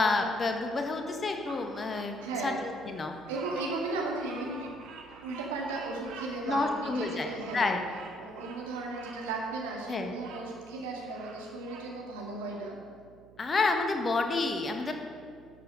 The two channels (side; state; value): right; noise; hum, 22 dB below the sound